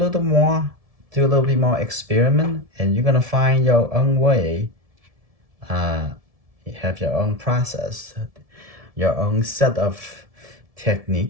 more, do a little bit more experiment, and you're gonna find your own way. You have your own process, your own set of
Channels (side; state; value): left; late; 1.7 ms